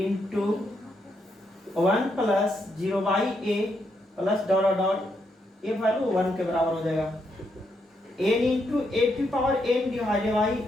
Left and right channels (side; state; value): both; normal; correlation 0.79